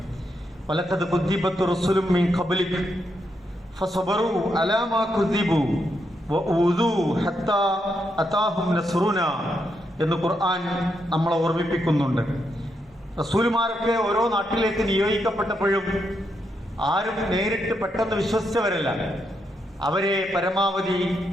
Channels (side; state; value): both; normal; correlation 0.81